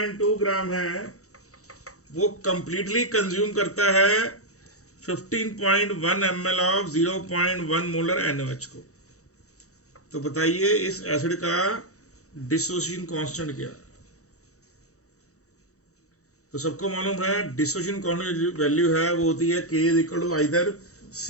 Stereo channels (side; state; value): right; late; 0.65 ms